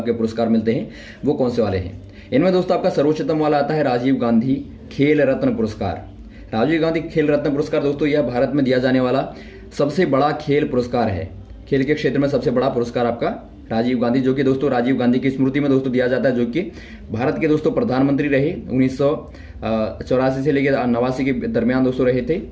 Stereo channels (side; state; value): both; identical; correlation 1.00